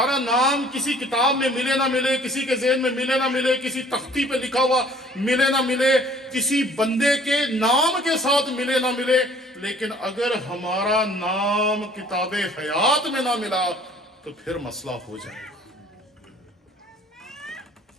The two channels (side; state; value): both; normal; correlation 0.54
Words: نام کسی کتاب میں ملے نہ ملے، کسی کے ذہن میں ملے نہ ملے، کسی تختی پہ لکھا ہوا ملے نہ ملے، کسی بندے کے نام کے ساتھ ملے نہ ملے، لیکن اگر ہمارا نام کتاب حیات میں نہ ملا تو پھر مسئلہ ہو جائے گا۔